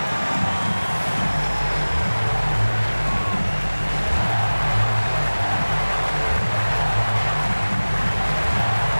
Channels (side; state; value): both; inverted; correlation -1.00